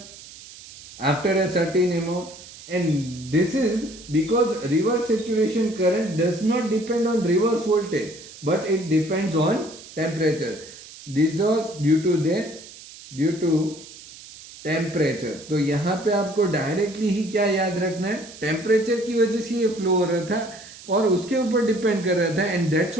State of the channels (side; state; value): right; noise; hiss, 17 dB below the sound